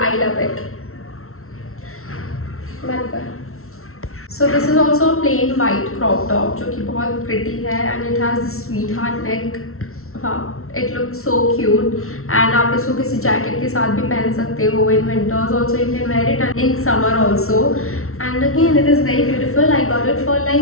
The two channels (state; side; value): late; right; 0.62 ms